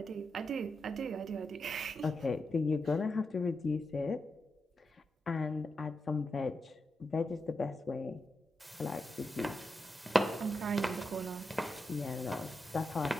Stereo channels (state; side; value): normal; both; correlation 0.86